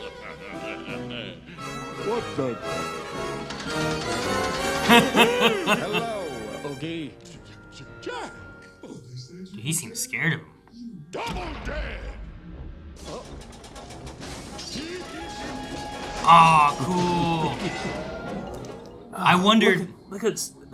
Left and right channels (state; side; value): identical; both; correlation 1.00